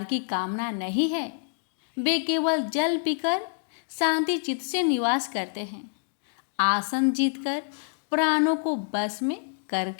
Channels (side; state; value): right; silent; digital silence